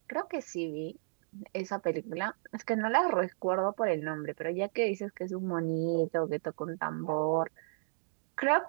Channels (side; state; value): left; silent; digital silence